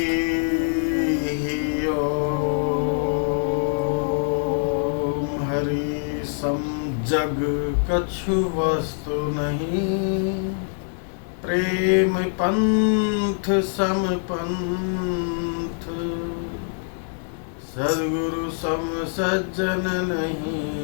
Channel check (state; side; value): silent; right; digital silence